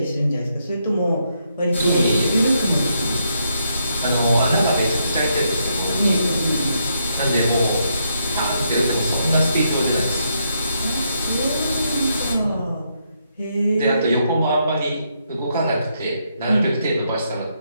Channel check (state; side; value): inverted; both; correlation -0.77